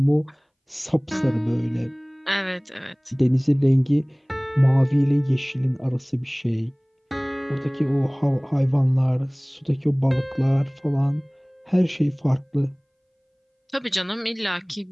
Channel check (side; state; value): both; identical; correlation 1.00